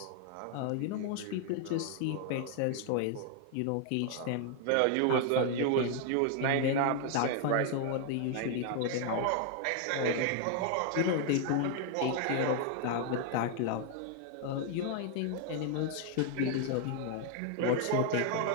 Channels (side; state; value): both; different; correlation 0.00